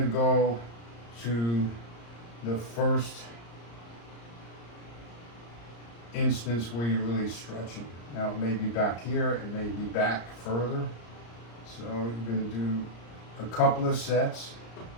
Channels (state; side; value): late; right; 34 ms